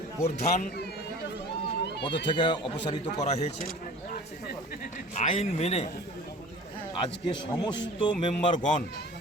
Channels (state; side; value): normal; both; correlation 0.43